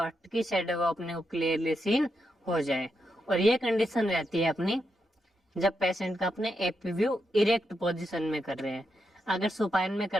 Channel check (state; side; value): normal; both; correlation 0.84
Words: की शेडो है वो अपने को क्लियरली सीन हो जाए। और ये कंडीशन रहती है अपनी जब पेशेंट का अपने एपी व्यू इरेक्ट पोजीशन में कर रहे हैं। अगर सुपाइन में